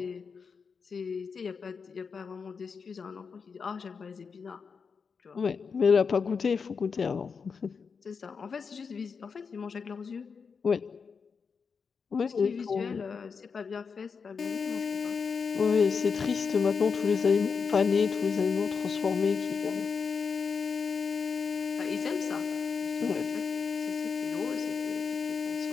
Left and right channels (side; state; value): right; quieter; 5.6 dB